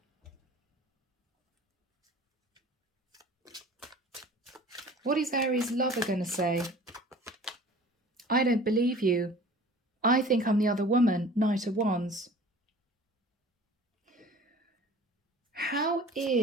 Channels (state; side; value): normal; both; correlation 0.45